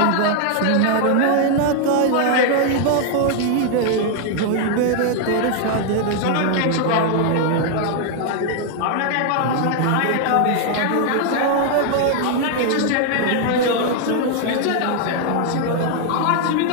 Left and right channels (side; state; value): both; different; correlation 0.00